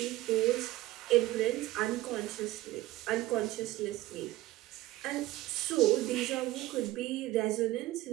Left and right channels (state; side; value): quieter; left; 16.8 dB